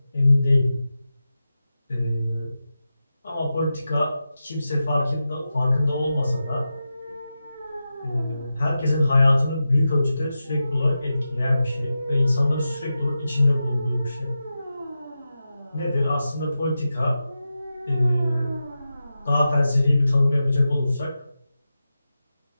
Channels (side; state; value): both; inverted; correlation -0.92